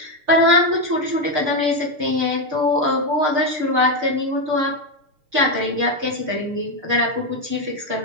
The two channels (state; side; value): late; left; 6.6 ms